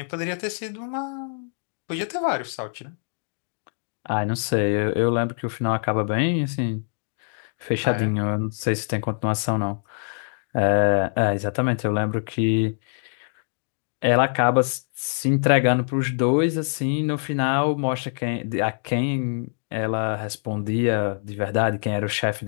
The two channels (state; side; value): silent; right; digital silence